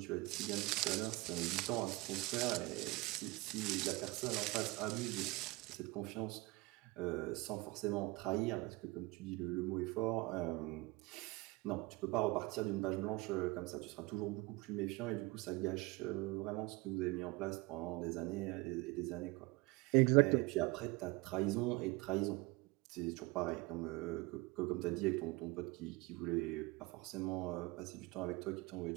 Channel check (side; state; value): left; quieter; 22.7 dB